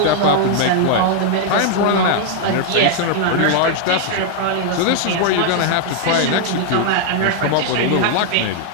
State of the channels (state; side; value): different; both; correlation 0.00